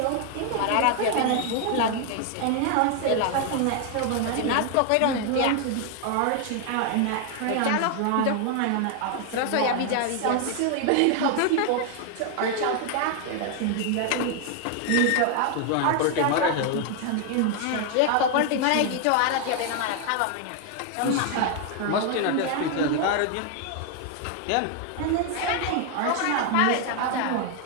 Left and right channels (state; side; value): different; both; correlation 0.00